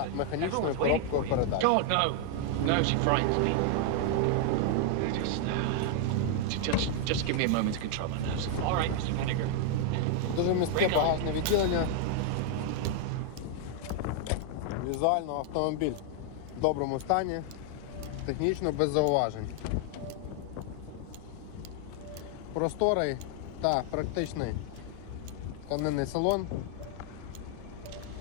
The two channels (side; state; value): both; different; correlation 0.00